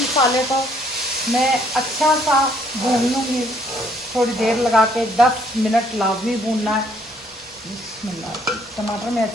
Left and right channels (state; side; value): noise; right; rumble, 29 dB below the sound